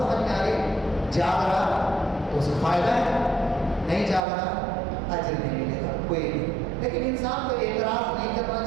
میں آ رہی، جاگ رہا تو اس کو فائدہ ہے، نہیں جاگ رہا اجر نہیں ملے گا کوئی نہیں۔ لیکن انسان کو اعتراض نہیں کرنا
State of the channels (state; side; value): drops out; left; at 4.2 s